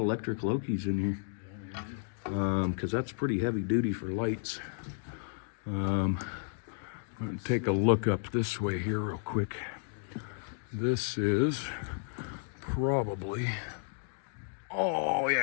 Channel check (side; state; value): right; silent; digital silence